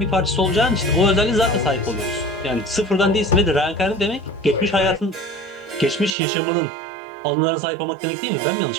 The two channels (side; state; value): left; drops out; at 6.2 s